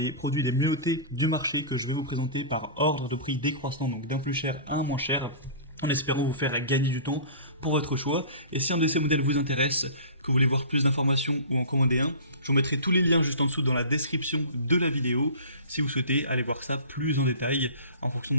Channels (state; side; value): inverted; both; correlation -0.37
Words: produits les mieux notés du marché que je vais vous présenter par ordre de prix décroissant, donc d'un plus cher à un moins cher, en espérant vous faire gagner du temps pour votre choix. Et si un de ces modèles vous intéresse, que vous voulez voir plus d'informations ou en commander un, je vous mettrai tous les liens juste en dessous dans la description de la vidéo, si vous souhaitez aller voir ça plus en détail, en fonction